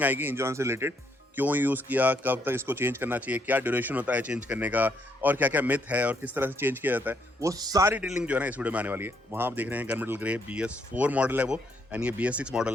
आएगी इंजन ऑयल से रिलेटेड। क्यों यूज़ किया, कब तक इसको चेंज करना चाहिए, क्या ड्यूरेशन होता है चेंज करने का, और क्या क्या मिथ है और किस तरह से चेंज किया जाता है, वो सारी डिटेलिंग जो है ना इस वीडियो में आने वाली है। वहाँ आप देख रहे हैं गनमेटल ग्रे BS4 मॉडल है वो, एंड ये BS6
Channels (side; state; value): both; normal; correlation 0.73